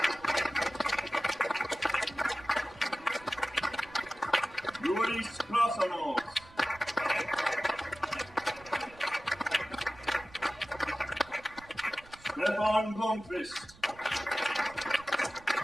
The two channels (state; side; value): noise; right; rumble, 23 dB below the sound